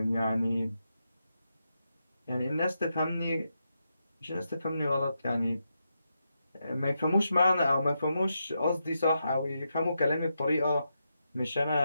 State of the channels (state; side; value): inverted; both; correlation -0.85